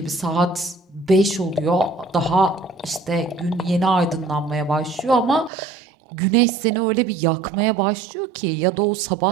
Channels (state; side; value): drops out; left; at 5.5 s